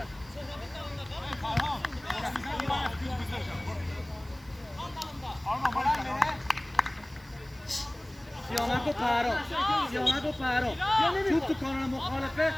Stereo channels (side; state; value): right; noise; hiss, 26 dB below the sound